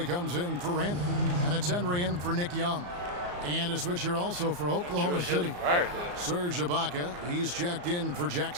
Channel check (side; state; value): left; late; 34 ms